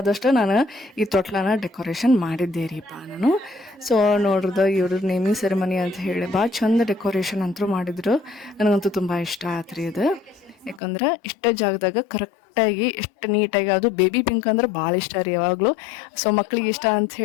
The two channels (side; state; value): right; drops out; at 10.8 s